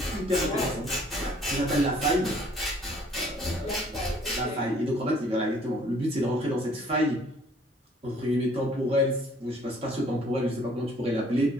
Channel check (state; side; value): normal; both; correlation 0.58